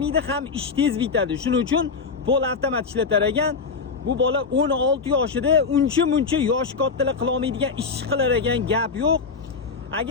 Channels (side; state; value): right; quieter; 4.9 dB